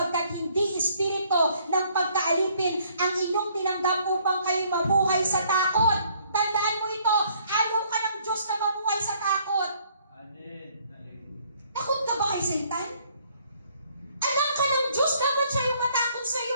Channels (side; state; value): both; inverted; correlation -0.63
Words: hindi Espiritu ng pagkaalipin ang inyong tinanggap upang kayo mabuhay sa takot. Tandaan mo ito, ayaw ka ng Diyos na mabuhay sa takot. Takot ka ba kay Satan? Anak ka ng Diyos, dapat siya yung matakot sa